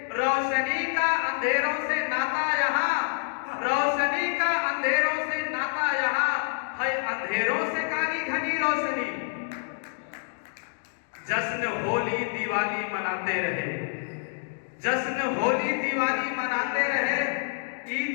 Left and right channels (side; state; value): right; silent; digital silence